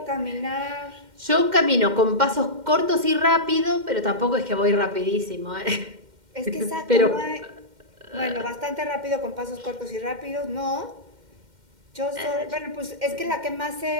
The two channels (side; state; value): left; late; 2.1 ms